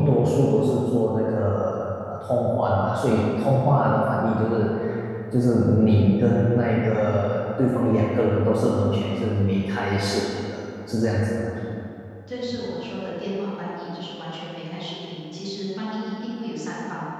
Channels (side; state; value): both; identical; correlation 1.00